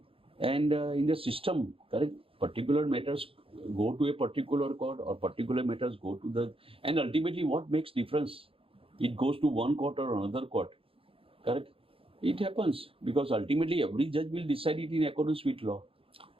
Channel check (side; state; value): left; late; 0.27 ms